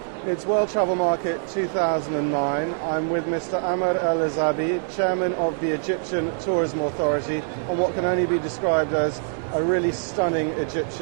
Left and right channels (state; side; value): silent; left; digital silence